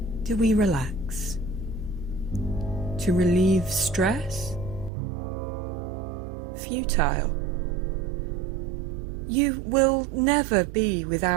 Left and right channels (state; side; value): drops out; left; at 4.9 s